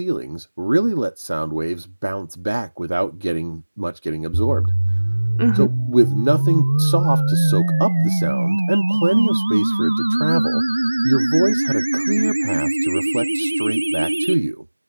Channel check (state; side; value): inverted; both; correlation -1.00